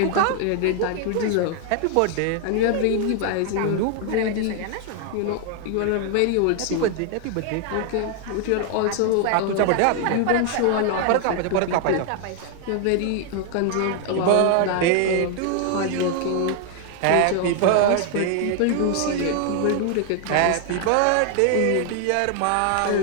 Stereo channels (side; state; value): both; different; correlation 0.00